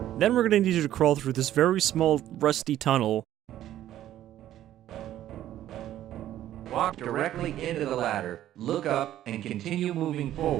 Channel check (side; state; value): left; quieter; 12.6 dB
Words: Then we're going to need you to crawl through this very small, rusty tunnel. Walk directly into the ladder, look up, and continue moving